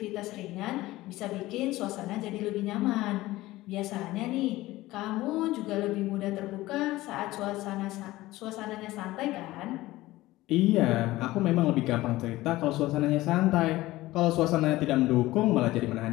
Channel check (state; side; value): quieter; right; 17.7 dB